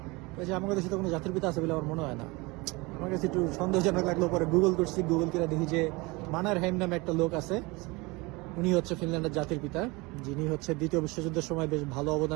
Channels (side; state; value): left; quieter; 24.7 dB